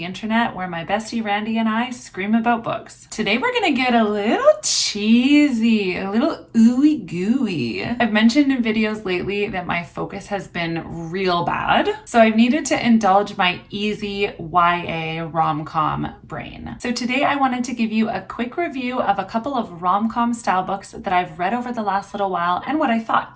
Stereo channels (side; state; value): both; identical; correlation 1.00